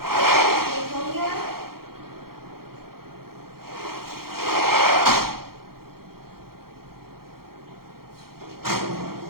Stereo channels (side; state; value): left; late; 0.94 ms